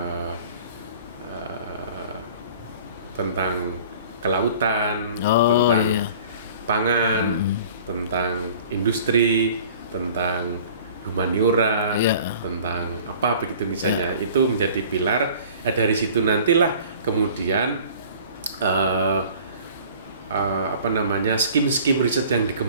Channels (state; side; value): inverted; both; correlation -0.47